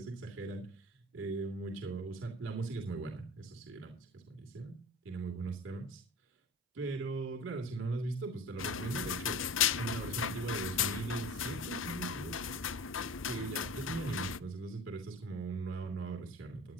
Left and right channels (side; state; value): both; normal; correlation 0.37